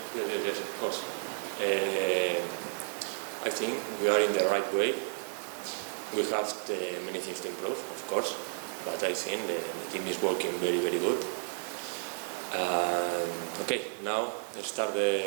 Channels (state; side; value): silent; left; digital silence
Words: of course. I think we are in the right way. We have many things to improve, of course, but I think the team is working very, very good. Okay, now let's start